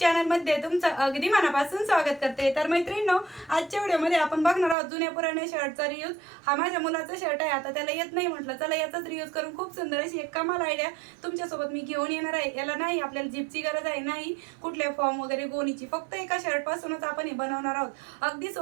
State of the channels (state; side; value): drops out; left; at 4.8 s